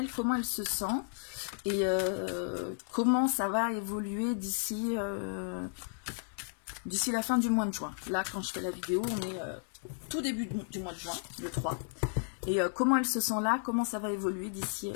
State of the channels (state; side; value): silent; right; 55 dB below the other